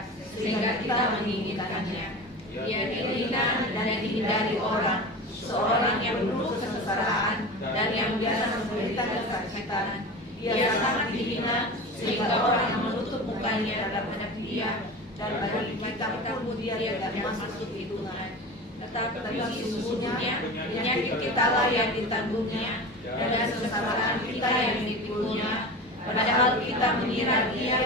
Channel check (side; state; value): both; normal; correlation 0.31